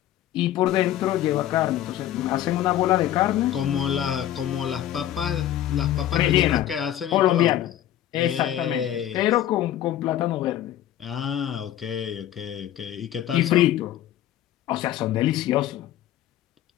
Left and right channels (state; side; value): quieter; right; 12.2 dB